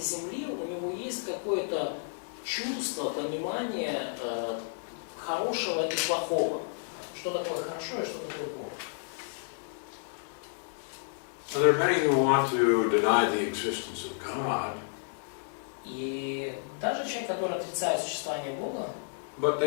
Земли, у него есть какое-то чувство, понимание хорошего и плохого. Что такое хорошо и что такое плохо. So there are many who want to deny the existence of God, И даже человек, который отрицает существование Бога, but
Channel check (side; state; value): right; silent; 57 dB below the other